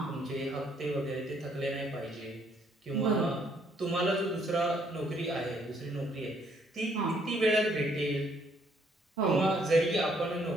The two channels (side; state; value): both; normal; correlation 0.67